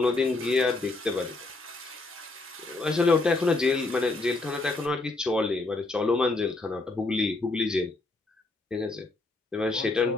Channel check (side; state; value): right; quieter; 3.2 dB